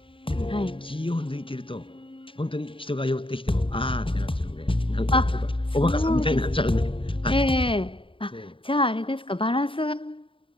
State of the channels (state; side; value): late; right; 0.25 ms